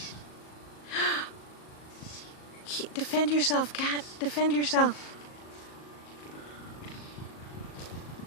Defend yourself, cat. Defend yourself.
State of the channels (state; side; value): late; right; 38 ms